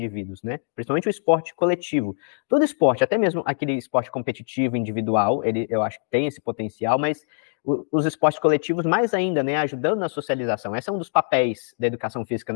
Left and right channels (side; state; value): right; silent; digital silence